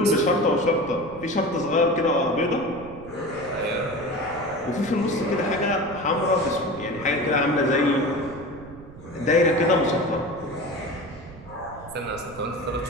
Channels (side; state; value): right; noise; rumble, 18 dB below the sound